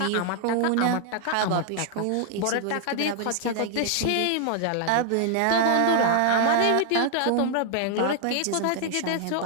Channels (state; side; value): different; both; correlation 0.00